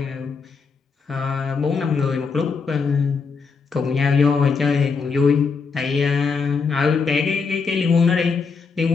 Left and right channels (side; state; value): right; quieter; 5.1 dB